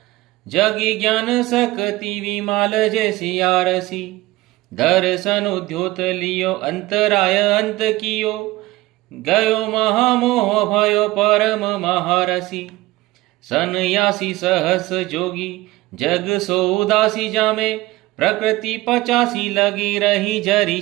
जगी ज्ञान शक्ति विमाल जैसी आरसी। दर्शन उद्योत लियो अंतराय अंत कियो, गयो महामोह भयो परम महारसी। सन्यासी सहस जोगी जग सो उदासी, जामे प्रकृति 85 लगी रही जरी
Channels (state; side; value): quieter; left; 19.0 dB